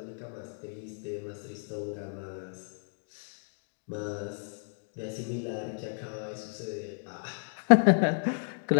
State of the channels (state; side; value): silent; right; 56 dB below the other